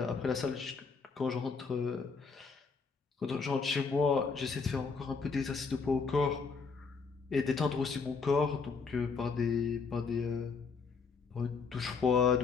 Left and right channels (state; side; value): quieter; right; 5.0 dB